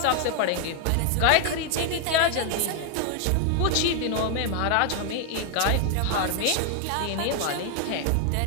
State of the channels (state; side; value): different; both; correlation 0.00